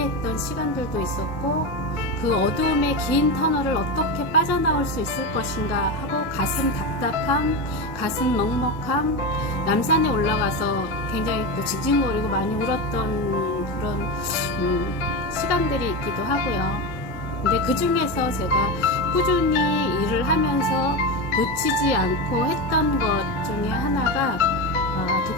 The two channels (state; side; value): normal; both; correlation 0.18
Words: 시간들도 있었고, 그 어두움의 긴 터널을 어떻게 빠져나올 수 있을 것인가 하고 가슴 답답함, 가슴 먹먹함, 남산에 올라가서 굉장히 또 징징거리고 많이 울었던 그런 시간들이 있기도 하고요. 근데 그 중에서 제가 꾸준히 일을 하면서 놓치지 않고 했던 것 중에 하나가